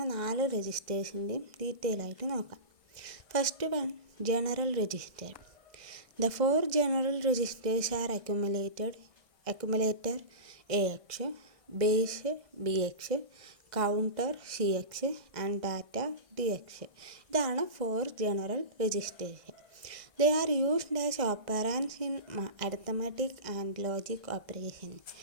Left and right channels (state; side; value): late; left; 1.6 ms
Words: 4 രജിസ്റ്റേഴ്സിൻ്റെയും ഡീറ്റെയിൽ ആയിട്ട് നോക്കാം. First one, general register. The 4 general registers are accumulator AX, base BX, counter CX and data DX. ഇതാണ് 4 general registers. They are used as operands in arithmetic and logic operations.